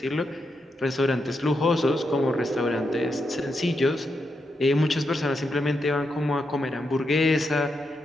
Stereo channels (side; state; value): both; normal; correlation 0.84